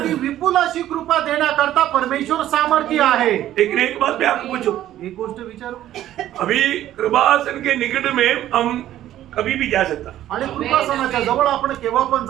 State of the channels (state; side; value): quieter; left; 12.8 dB